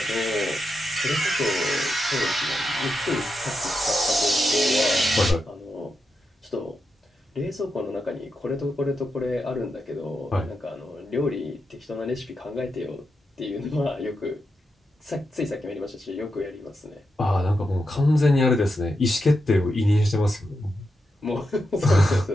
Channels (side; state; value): both; normal; correlation 0.86